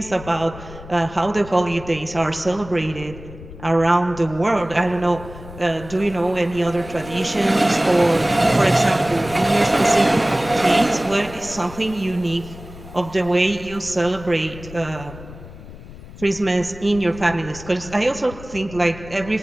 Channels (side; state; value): left; noise; rumble, 16 dB below the sound